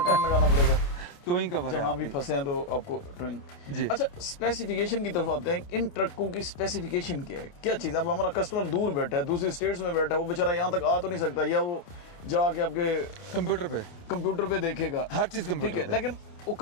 लगाना पड़ेगा। टोइंग कवर है जहाँ भी आपकी। फंसे हैं तो आपको ड्राइंग जी। अच्छा, स्पेसिफिकेशन की तरफ आते हैं। इन ट्रकों की स्पेसिफिकेशन क्या है, क्या चीज़? अब हमारा कस्टमर दूर बैठा है, दूसरी स्टेट्स में बैठा है, वो बेचारा यहाँ तक आ तो नहीं सकता, या वो जाके आपके कंप्यूटर पे देखेगा, हर चीज कंप्यूटर ठीक है, पे। लेकिन वो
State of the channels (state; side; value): late; right; 29 ms